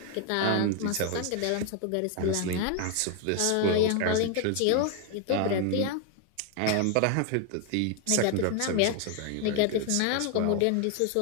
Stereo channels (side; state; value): both; different; correlation 0.01